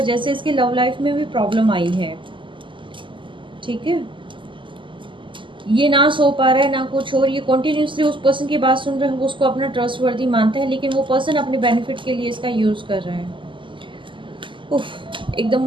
से इसकी लव लाइफ में भी प्रॉब्लम आई है। ठीक है, ये ना सो पा रहा है ना कुछ, और ये कॉन्टिन्यूसली उस पर्सन की बात सुन रहा है, वो उसको अपना ट्रस्टवर्दी मानता है, लेकिन वो पर्सन अपने बेनिफिट के लिए इसका यूज़ कर रहा है। उफ, एकदम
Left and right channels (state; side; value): late; left; 0.24 ms